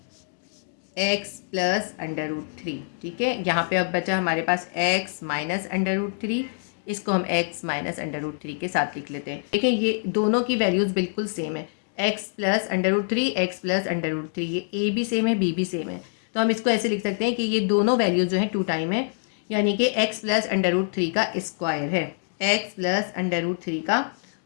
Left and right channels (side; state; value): right; silent; digital silence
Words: x + √3, ठीक है। यहाँ पे अब बचा हमारे पास x -√3, इसको हम x -√3 के साथ लिख लेते हैं। देखिए ये दोनों की वैल्यूज़ बिल्कुल सेम है, x + √3 x + √3, ये a भी सेम है b भी सेम है, तो हम इसको ऐसे लिख सकते हैं कि ये दोनों वैल्यूज़ जो है 2 टाइम है, यानी कि x + √3 का स्क्वायर है, x + √3 का